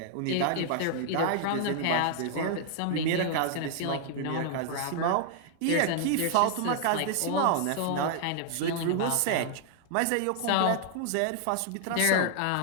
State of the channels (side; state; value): both; different; correlation 0.00